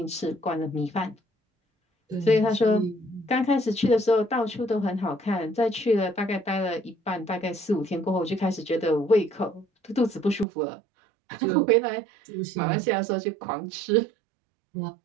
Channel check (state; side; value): drops out; left; at 10.5 s